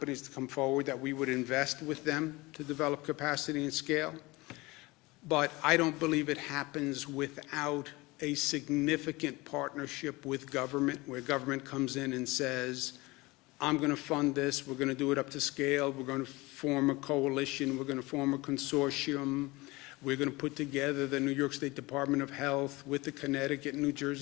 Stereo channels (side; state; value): right; quieter; 22.5 dB